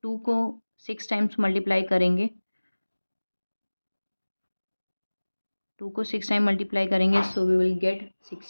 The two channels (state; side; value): inverted; both; correlation -1.00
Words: 2 को 6 टाइम्स मल्टीप्लाई करेंगे. 2 को 6 टाइम मल्टीप्लाई करेंगे सो वी विल गेट